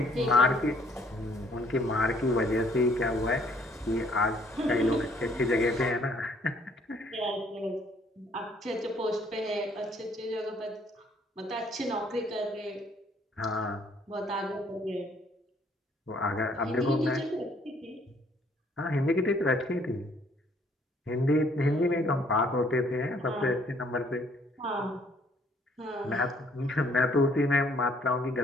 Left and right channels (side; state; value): both; normal; correlation 0.63